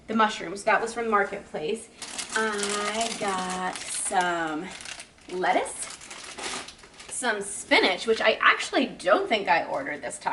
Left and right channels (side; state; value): both; identical; correlation 1.00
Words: mushrooms. That was from Marketplace. I got some lettuce, some spinach, which I actually don't think I ordered this